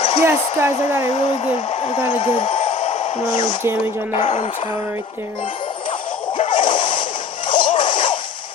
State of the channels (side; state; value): right; quieter; 4.3 dB